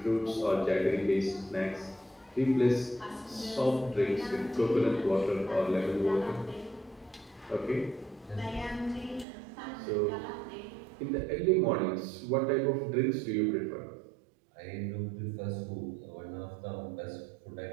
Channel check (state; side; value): drops out; left; at 9.2 s